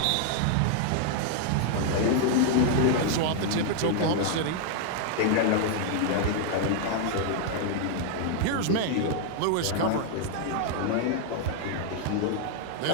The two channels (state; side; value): different; both; correlation 0.00